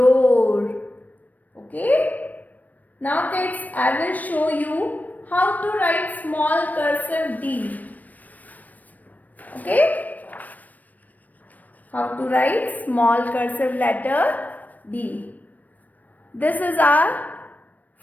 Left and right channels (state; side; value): late; right; 0.081 ms